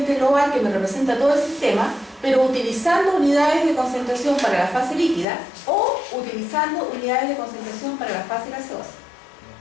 global que me representa todo el sistema, pero utilizando unidades de concentración para la fase líquida o utilizando unidades de concentración para la fase gaseosa.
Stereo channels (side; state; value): right; drops out; at 5.2 s